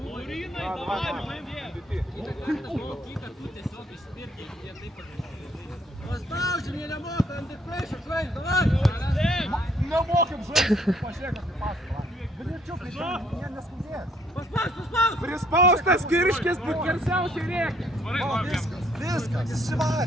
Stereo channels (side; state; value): both; normal; correlation 0.66